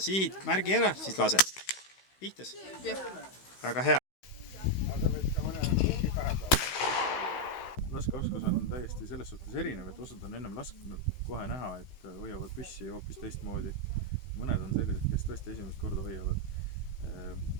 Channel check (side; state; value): right; late; 16 ms